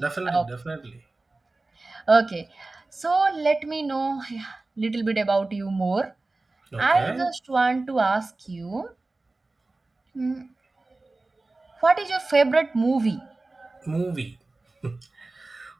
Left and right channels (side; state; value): left; quieter; 3.2 dB